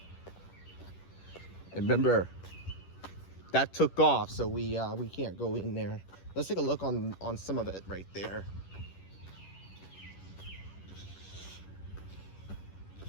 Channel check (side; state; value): right; late; 10 ms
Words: And remember, that took off, so we can't go in there. Let's take a look on some of it right there.